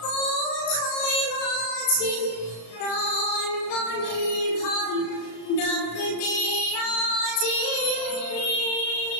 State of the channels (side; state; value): right; late; 35 ms